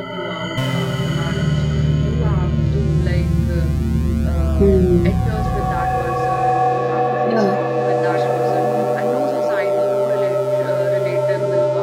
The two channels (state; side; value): identical; both; correlation 1.00